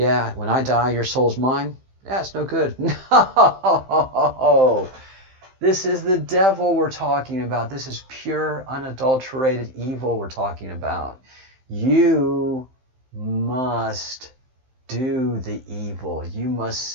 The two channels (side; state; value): left; late; 15 ms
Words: when I die, your soul's mine. Yeah, it's no good. No, this is the devil we're talking about. This is pure, unadulterated evil we're talking about. You must do the evil. You must